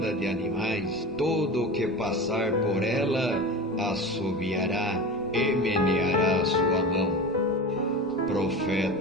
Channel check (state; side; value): normal; both; correlation 0.30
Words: de animais, todo o que passar por ela assobiará e meneará a sua mão.